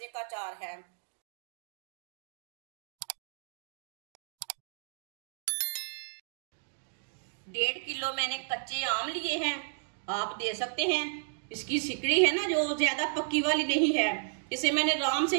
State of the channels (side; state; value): left; silent; digital silence